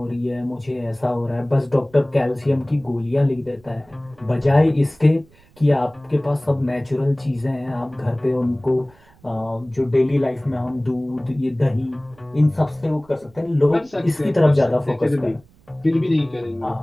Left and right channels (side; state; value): right; noise; rumble, 29 dB below the sound